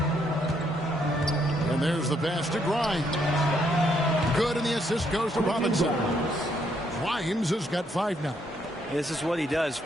And there's the pass to Grimes. Good, and the assist goes to Robinson. Grimes has got 5 now. This is what he does.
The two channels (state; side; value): normal; both; correlation 0.73